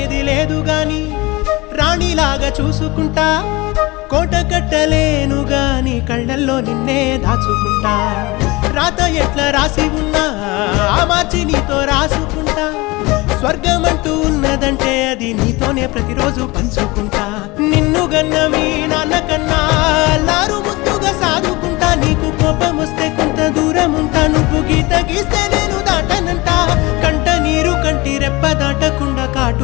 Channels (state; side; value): quieter; right; 23.1 dB